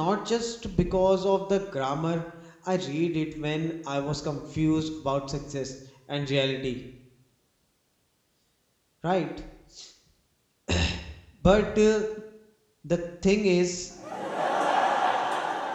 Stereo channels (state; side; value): identical; both; correlation 1.00